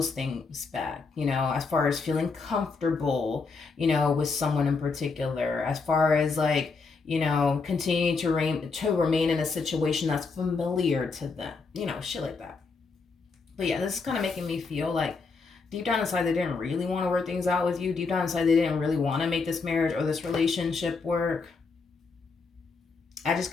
things back, as far as feeling comfortable, with someone in particular, as far as like, continuing to remain in a situation that's familiar to them, shit like that. But yeah, this is kind of making me feel like deep down inside they didn't really want to work things out with you. Deep down inside they didn't really want to make this marriage or this relationship work. I just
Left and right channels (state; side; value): quieter; right; 4.5 dB